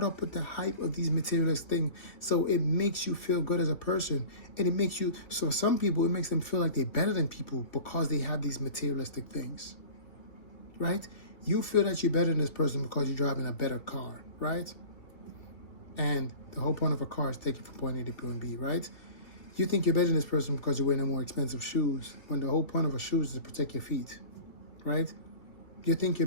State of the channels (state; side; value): late; right; 2.8 ms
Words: up with the hype of these materialistic things. So it makes you feel good as a person. And it makes you, so some people, it makes them feel like they're better than people because they have these materialistic things, right? You feel that you're better than this person because you're driving a better car, right? And the whole point of a car is to take you from point A to point B, right? You think you're better than this person because you're wearing more expensive shoes, when the whole point of a shoe is to protect your feet, right? You think you're